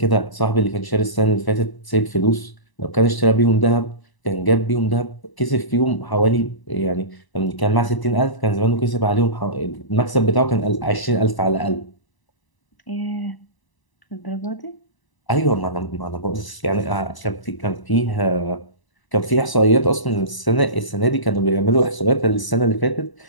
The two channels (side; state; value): right; late; 1.0 ms